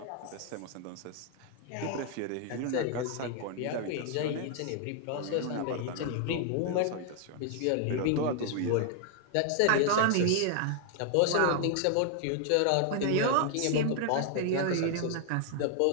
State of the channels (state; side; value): different; both; correlation 0.00